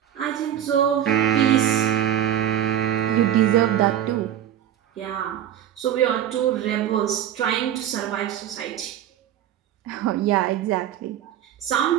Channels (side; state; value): left; quieter; 11.0 dB